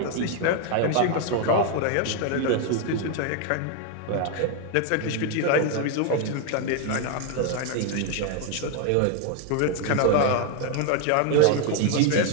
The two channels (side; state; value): both; different; correlation 0.00